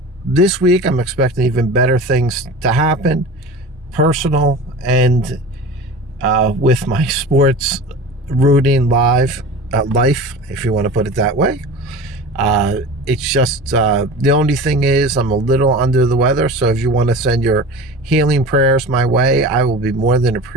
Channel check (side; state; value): both; normal; correlation 0.35